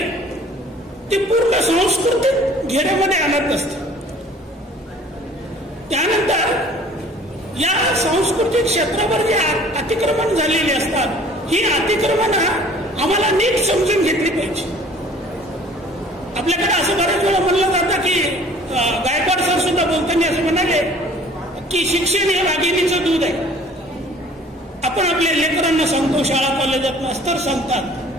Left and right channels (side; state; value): both; normal; correlation 0.51